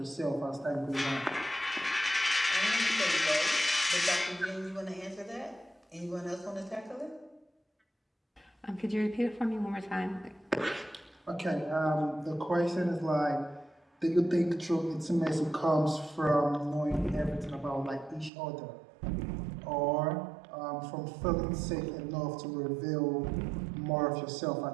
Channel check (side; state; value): left; drops out; at 18.3 s